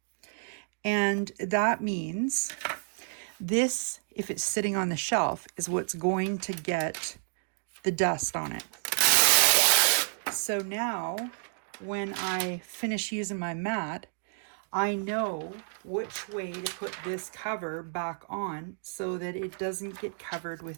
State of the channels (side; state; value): left; silent; digital silence